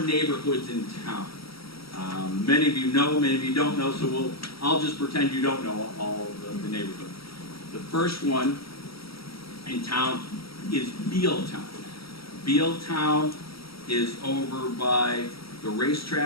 in town. Many of you know, many of you don't know, so I'll just pretend you don't know all of the neighborhoods. The first one in town is Bealtown. Bealtown is over by the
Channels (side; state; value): right; late; 0.75 ms